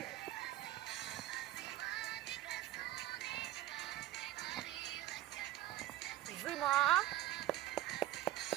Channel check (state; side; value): quieter; left; 14.7 dB